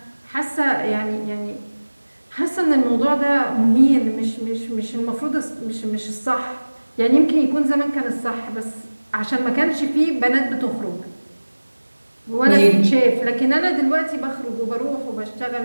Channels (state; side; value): inverted; both; correlation -1.00